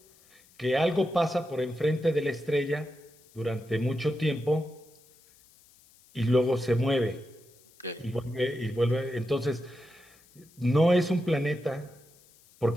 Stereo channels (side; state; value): left; noise; hiss, 28 dB below the sound